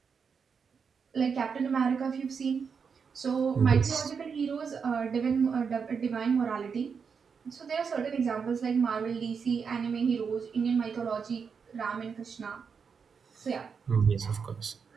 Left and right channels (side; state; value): left; quieter; 6.0 dB